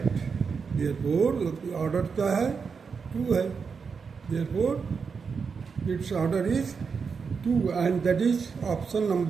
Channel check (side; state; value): left; quieter; 5.6 dB